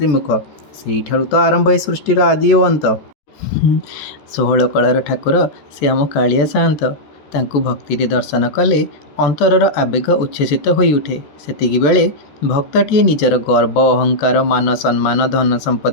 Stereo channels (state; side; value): late; right; 14 ms